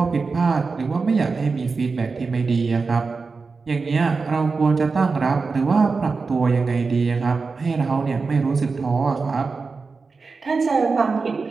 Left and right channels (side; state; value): left; quieter; 4.4 dB